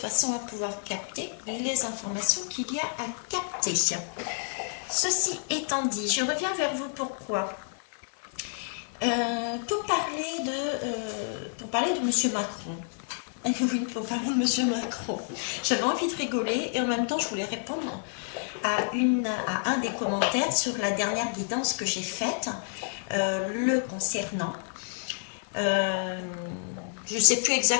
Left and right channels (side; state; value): right; silent; digital silence